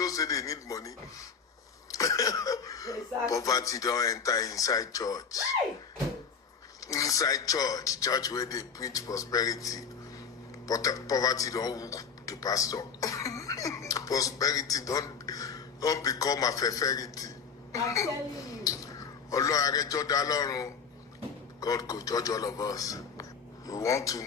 say they need money. Exactly. Poverty don't enter inside church. Inside church where they preach prosperity. But poverty don't hook the pastor. Prosperity don't become a favorite. I'm telling you. God could judge all of us. You want to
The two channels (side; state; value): right; quieter; 6.1 dB